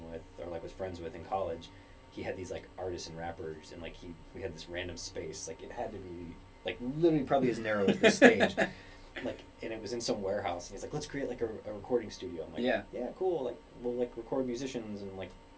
with or like was friends with in college, he had these like artists and rappers, and like we had this random space, like it had to be like literally probably as narrow as this stage. Like, and it was in some warehouse, and he's like, let's create like a recording studio. I'm like, yeah, cool. Like, we'll like record musicians and like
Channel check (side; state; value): both; identical; correlation 1.00